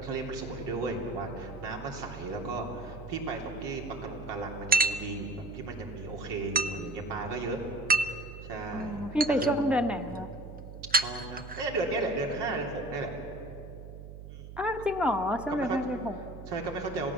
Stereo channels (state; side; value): noise; right; hum, 12 dB below the sound